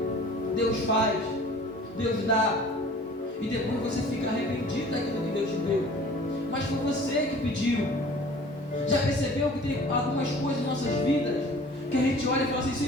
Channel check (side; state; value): both; normal; correlation 0.47